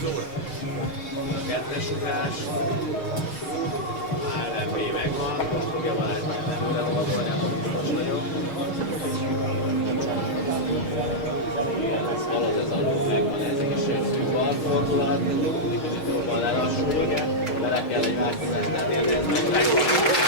A kettes ugrás. ALMB megvan. Most fogja Balázs meg előre oldani, akkor biztos vagyok. Igen, ez halad ez a ló, megvan ez is szűk balfordulat, mindig kicsit jobban lelassul, bele kell egy változást tenni, de ez megvan.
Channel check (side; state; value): right; late; 6.5 ms